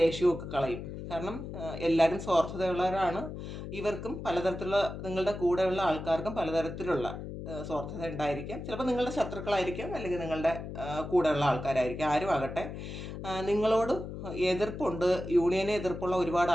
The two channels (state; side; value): noise; left; hum, 8 dB below the sound